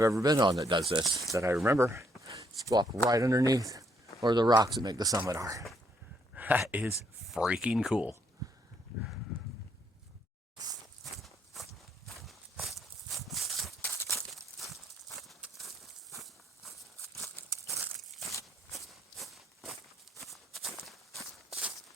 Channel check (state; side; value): normal; both; correlation 0.71